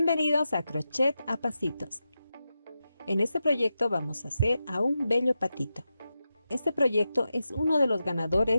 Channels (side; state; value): both; inverted; correlation -0.90